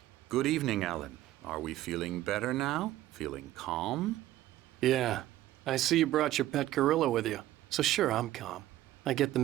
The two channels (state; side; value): quieter; left; 14.6 dB